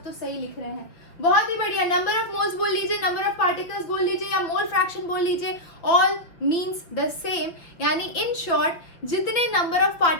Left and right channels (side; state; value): right; late; 5.7 ms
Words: तो सही लिख रहे हैं, बहुत ही बढ़िया। नंबर ऑफ मोल्स बोल लीजिए, नंबर ऑफ पार्टिकल्स बोल लीजिए या मोल फ्रैक्शन बोल लीजिए, ऑल मीन्स द सेम। यानी इन शॉर्ट जितने नंबर ऑफ